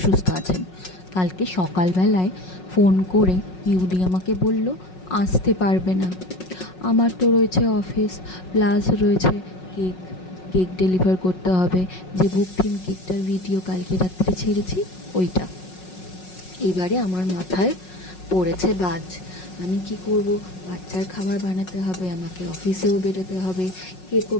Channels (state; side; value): late; right; 5.4 ms